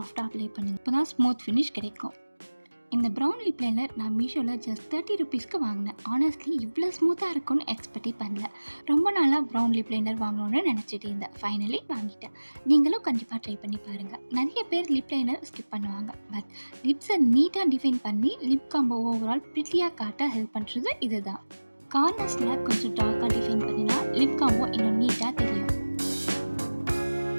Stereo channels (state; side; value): inverted; both; correlation -1.00